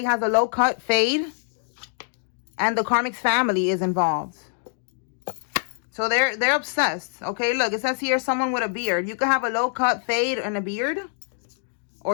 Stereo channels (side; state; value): right; silent; 62 dB below the other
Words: has a low cut fade. And the karmic's family is involved. So they're obsessed. Okay, look, it says here someone with a beard. You could have a low cut fade and a beard.